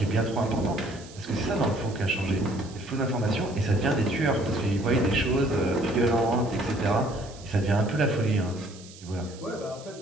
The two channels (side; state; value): right; noise; hiss, 20 dB below the sound